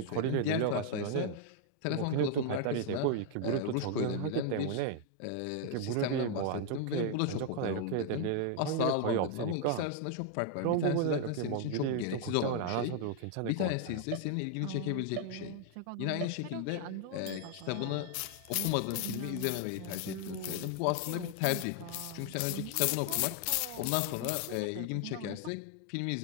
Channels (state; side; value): different; both; correlation 0.00